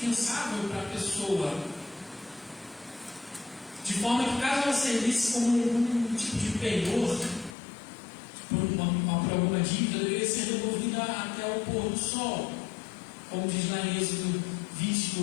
para a pessoa. De forma que, caso ela servisse como um tipo de penhor por alguma dívida, deveria ser devolvida até o pôr do sol. Como diz lá em Êxodo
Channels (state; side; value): drops out; right; at 7.6 s